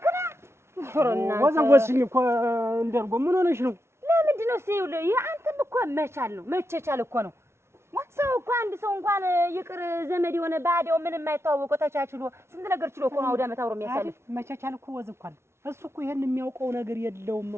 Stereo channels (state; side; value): late; left; 0.13 ms